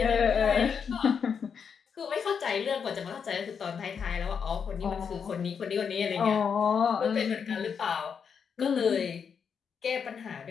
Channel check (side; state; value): right; quieter; 6.7 dB